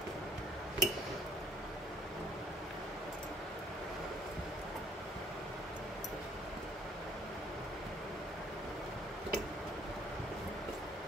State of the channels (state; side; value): normal; both; correlation 0.58